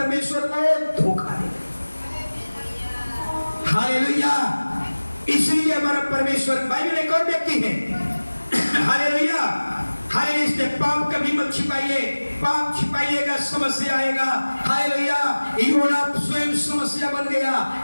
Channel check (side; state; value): both; inverted; correlation -1.00